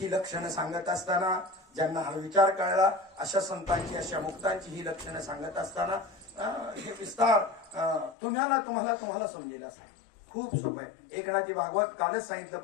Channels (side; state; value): right; drops out; at 8.2 s